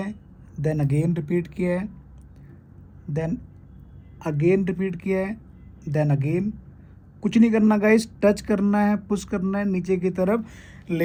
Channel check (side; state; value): both; identical; correlation 1.00